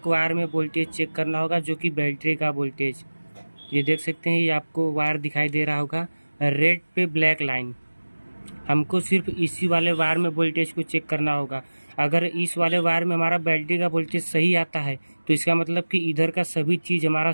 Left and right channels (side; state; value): both; inverted; correlation -1.00